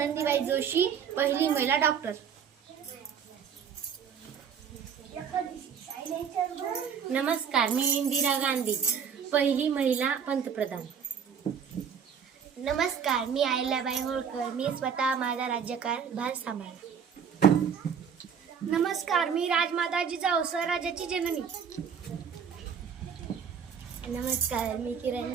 जोशी, पहिली महिला डॉक्टर. नमस्कार, मी इंदिरा गांधी, पहिली महिला पंतप्रधान. नमस्कार, मी अहिल्याबाई होळकर. मी स्वतः माझा राज्यकारभार सांभाळला. नमस्कार, मी राजमाता जिजाऊ, स्वराज्याची जननी. नमस्कार, मी किरण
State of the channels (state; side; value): quieter; left; 7.2 dB